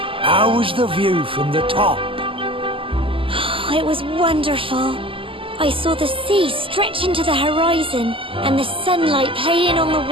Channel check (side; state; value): left; late; 0.25 ms